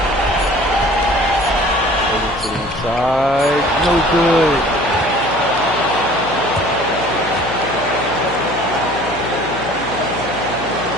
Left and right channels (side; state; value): left; noise; hum, 13 dB below the sound